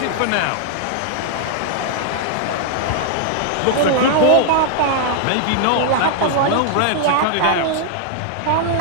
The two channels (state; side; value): different; both; correlation 0.00